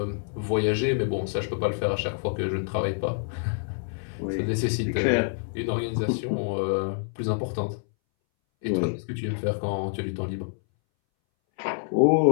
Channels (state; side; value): silent; right; 60 dB below the other